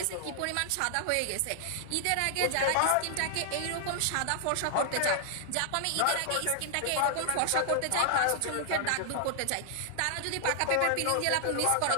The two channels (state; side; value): different; both; correlation 0.00